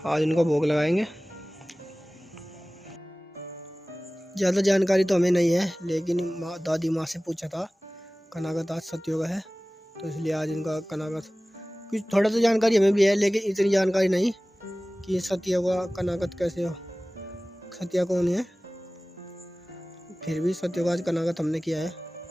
आज उनको भोग लगाएंगे। ज़्यादा जानकारी तो हमें नहीं है, लेकिन दादी माँ से पूछा था। कनागत आज सत्यों का है, तो इसलिए आज इनका कनागत कुछ थोड़ा सा जानकारी हमें भी है, लेकिन इतनी जानकारी नहीं कि सत्या का कनागत कैसे हो, सत्या कौन है। फिर भी सत्या का आज कनागत हमने किया है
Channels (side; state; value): both; normal; correlation 0.98